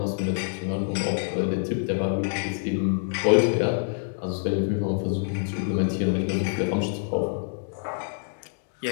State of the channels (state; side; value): silent; right; digital silence